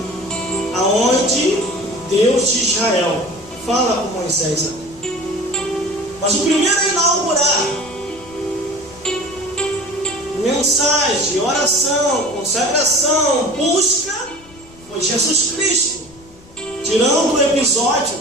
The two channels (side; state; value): left; noise; rumble, 24 dB below the sound